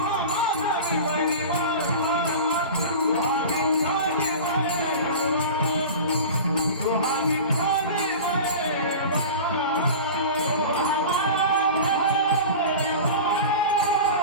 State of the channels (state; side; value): inverted; both; correlation -0.33